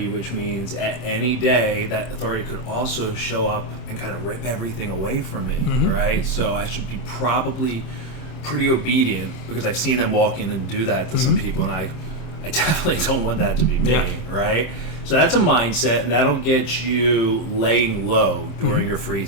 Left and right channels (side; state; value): right; late; 26 ms